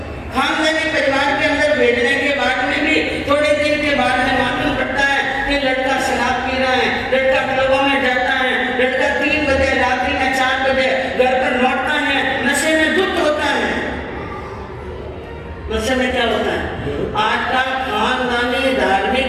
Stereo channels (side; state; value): both; identical; correlation 1.00